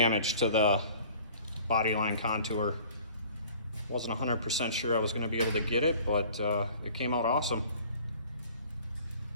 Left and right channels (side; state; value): both; inverted; correlation -0.49